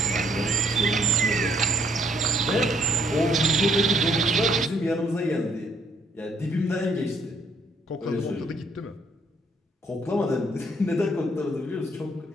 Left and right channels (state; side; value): normal; both; correlation 0.67